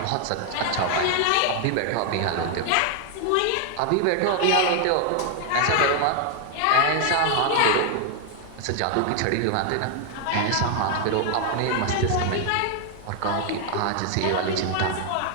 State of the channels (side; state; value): both; different; correlation 0.00